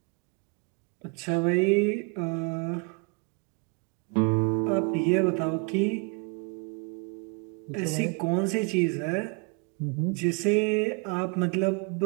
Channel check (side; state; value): left; quieter; 34.0 dB